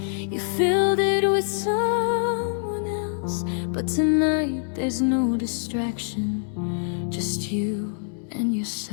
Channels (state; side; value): silent; right; 62 dB below the other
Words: you filled it with someone else. But tonight there's no distraction, just you and